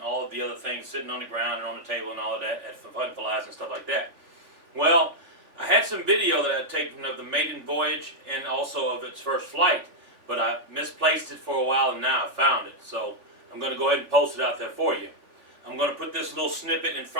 of the other things sitting on the ground and on the table and all of that at fun flies and stuff like that. Well, I had some video that I had taken of the maiden voyage and also of its first flight, but I misplaced it for a while and now I found it. So I'm going to go ahead and post it out there for you. I'm going to put this little snippet in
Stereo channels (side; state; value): left; late; 3.5 ms